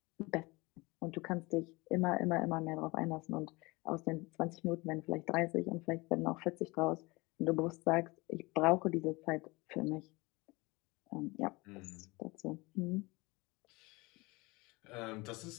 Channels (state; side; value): quieter; right; 24.1 dB